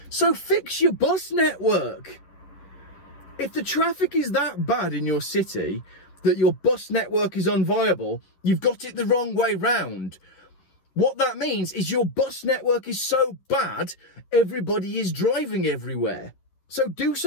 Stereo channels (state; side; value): late; right; 11 ms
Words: So fix your bus network. If the traffic is that bad in your city that your bus network is unviable, you've got it the wrong way round. What that means is your bus network is so bad, everybody is driving everywhere. So do